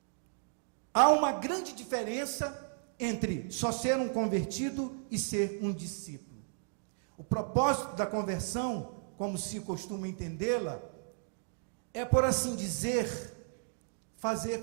Há uma grande diferença entre só ser um convertido e ser um discípulo. O propósito da conversão, como se costuma entendê-la, é, por assim dizer, fazer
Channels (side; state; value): left; silent; digital silence